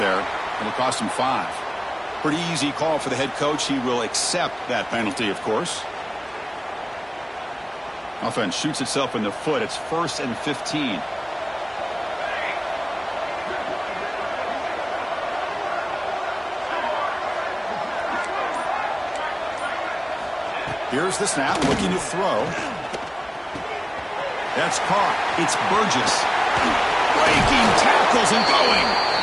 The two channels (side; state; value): both; identical; correlation 1.00